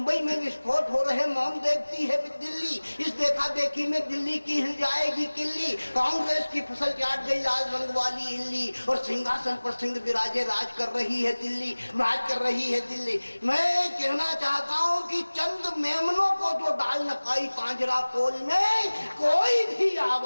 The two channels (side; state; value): both; inverted; correlation -1.00